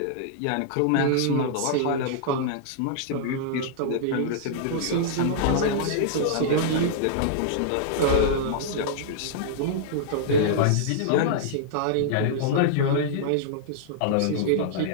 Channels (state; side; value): different; both; correlation -0.01